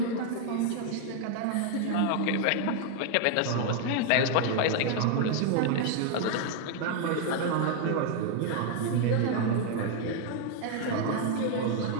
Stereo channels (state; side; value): different; both; correlation 0.01